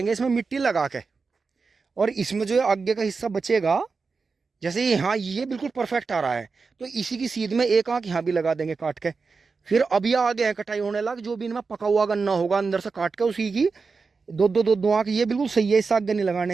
इसमें मिट्टी लगा के, और इसमें जो है आगे का हिस्सा बचेगा, जैसे यहाँ ये बिल्कुल परफेक्ट आ रहा है, तो इसी की सीध में एक आंख यहाँ भी लगा देंगे काट के। फिर अब ये आगे है कटाई होने लग, जो भी इनमें पका हुआ गन्ना होगा अंदर से काट के, उसी की दो आंख। ये बिल्कुल सही है, इस आगे नहीं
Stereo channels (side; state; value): left; quieter; 4.6 dB